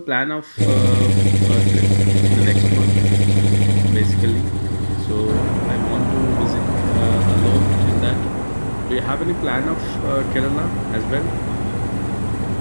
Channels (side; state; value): both; inverted; correlation -1.00